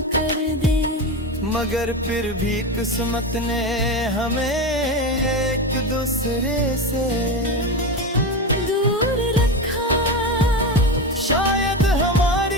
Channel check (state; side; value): normal; both; correlation 0.19